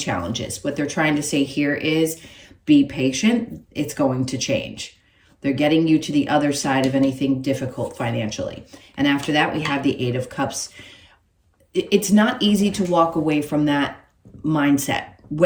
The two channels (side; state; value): both; identical; correlation 1.00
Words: What they're trying to say here is be patient. It's going to change. They're getting you to the other side of anything difficult financially. And after that, we have the Eight of Cups. It's not easy to walk away from that mindset.